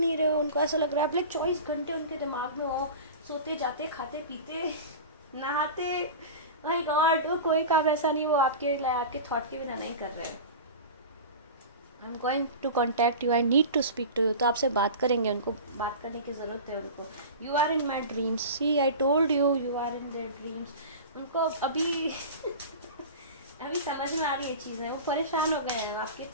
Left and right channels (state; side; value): inverted; both; correlation -0.32